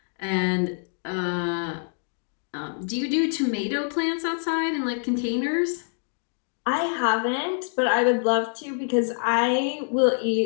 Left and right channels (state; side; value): silent; right; 61 dB below the other